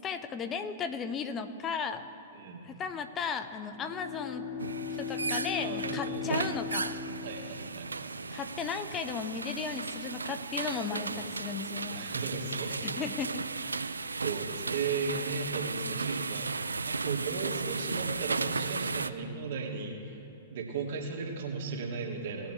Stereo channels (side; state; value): both; inverted; correlation -0.34